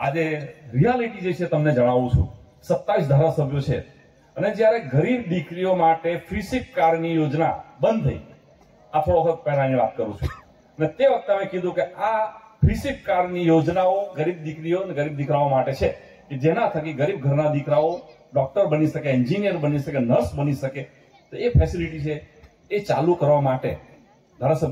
રિયાલિટી જે છે તમને જણાવું છું. 27 ધારાસભ્યો છે અને જ્યારે ગરીબ દીકરીઓ માટે ફ્રી સીટ કારની યોજના બંધ થઈ, આ થોડો વખત પહેલાની વાત કરું છું, અને તે વખતે અમે કીધું કે આ ફ્રી સીટ કારની યોજનાઓ ગરીબ દીકરીઓ અને ગરીબ દીકરાઓ માટે છે કે જેના થકી ગરીબ ઘરના દીકરાઓ ડોક્ટર બની શકે, એન્જિનિયર બની શકે, નર્સ બની શકે. તો એ ફેસિલિટી છે એ ચાલુ કરવા માટે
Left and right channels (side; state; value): both; identical; correlation 1.00